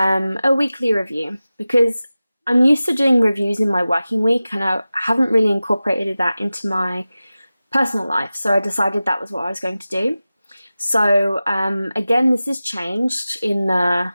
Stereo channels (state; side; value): inverted; both; correlation -0.96